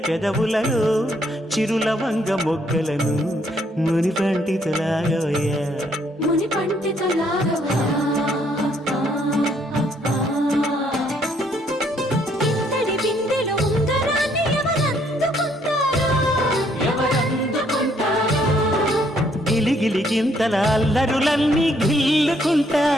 పెదవులలో చిరులవంగ మొగ్గలను మునిపంటితో లాగవయ్యా ఇంతటి బిందెలో ఉంగరాన్ని ఎవరందుకుంటారో గిలిగిలి గింతల అల్లరులన్నీ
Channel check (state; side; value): normal; both; correlation 0.68